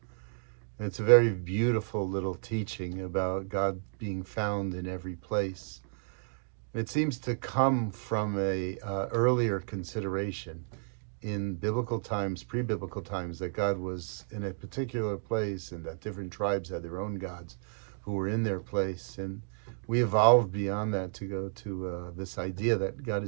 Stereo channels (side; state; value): left; silent; 56 dB below the other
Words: And it's a very beautiful little teaching about God being found in every place. And it seems to come from a earlier consideration in biblical times, pre-biblical times, that God was in a particular place and that different tribes had their own gods who were in their place. And we evolved beyond that to go to this idea that God